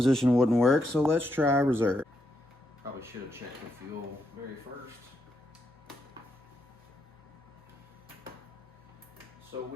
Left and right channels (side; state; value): both; normal; correlation 0.80